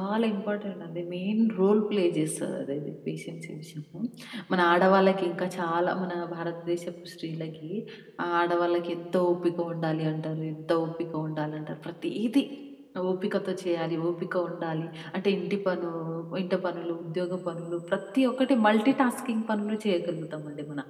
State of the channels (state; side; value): identical; both; correlation 1.00